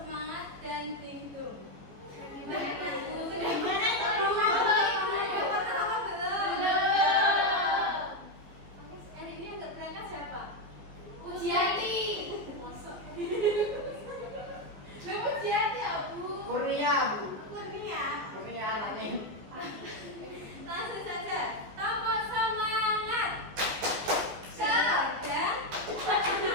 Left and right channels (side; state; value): left; late; 15 ms